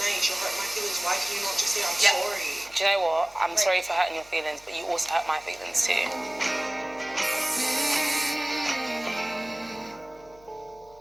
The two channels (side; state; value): left; noise; hum, 26 dB below the sound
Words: you hurt my feelings, why can you not just say I'm sorry? Do you know what? I'm sorry for hurting your feelings, but you also hurt my feelings too.